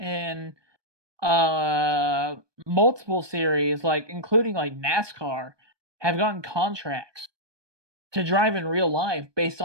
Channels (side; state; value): left; late; 1.2 ms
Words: multiple series, like including like NASCAR, have gotten contracts to drive in real life based